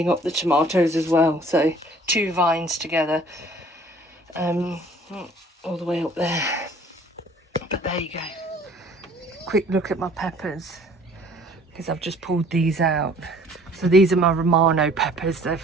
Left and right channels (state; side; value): normal; both; correlation 0.54